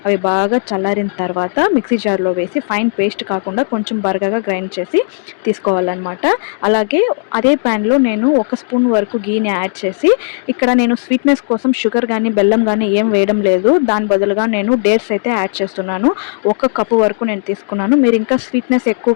అవి బాగా చల్లారిన తర్వాత మిక్సీ జార్లో వేసి ఫైన్ పేస్ట్ కాకుండా కొంచెం బరకగా గ్రైండ్ చేసి తీసుకోవాలన్నమాట. అలాగే అదే ప్యాన్లో నేను 1 స్పూన్ వరకు గీని యాడ్ చేసి ఇక్కడ నేను స్వీట్నెస్ కోసం షుగర్ కానీ బెల్లం కానీ ఏం వేయడం లేదు. దాని బదులుగా నేను డేట్స్ అయితే యాడ్ చేస్తున్నాను. 1 కప్పు వరకు నేను తీసుకున్నాను. మీరు ఇంకా స్వీట్నెస్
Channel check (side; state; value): right; silent; digital silence